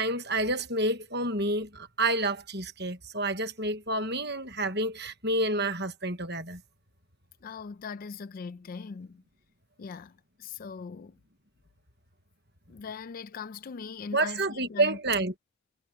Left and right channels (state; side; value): normal; both; correlation -0.04